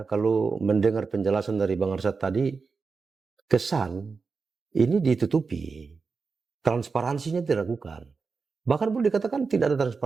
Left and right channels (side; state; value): left; quieter; 4.8 dB